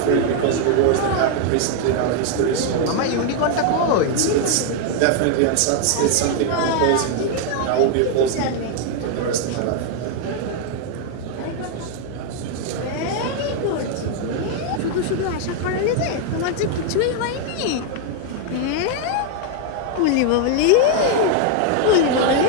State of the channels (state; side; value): different; both; correlation 0.00